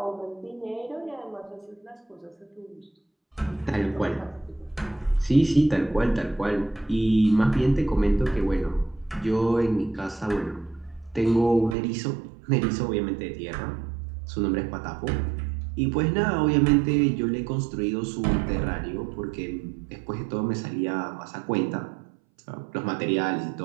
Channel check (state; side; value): drops out; left; at 11.8 s